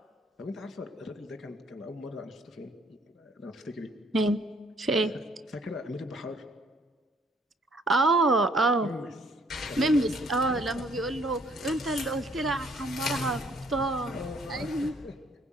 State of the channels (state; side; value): normal; both; correlation 0.63